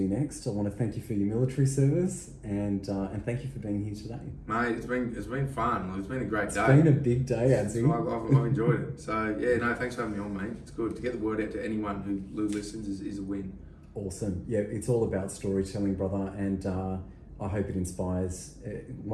next. I want to thank you for your military service and thank you for being here today. Mate, it's been fun. It's been a great day. It's been a big day, Adzi. I've enjoyed it. So yeah, no, thanks for having me on, mate. It's good to get the word out to anyone who listens is a win. Awesome. Yeah, it's all about storytelling, brother, and I hope it inspires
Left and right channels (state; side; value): identical; both; correlation 1.00